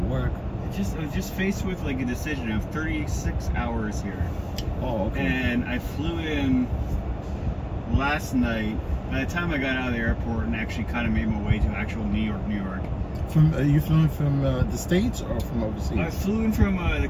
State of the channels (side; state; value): both; identical; correlation 1.00